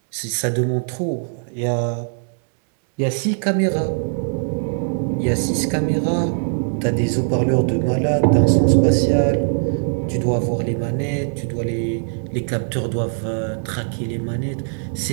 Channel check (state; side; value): silent; left; digital silence